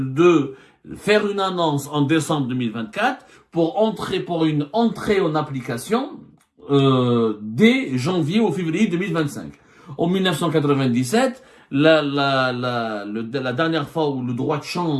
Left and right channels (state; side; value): identical; both; correlation 1.00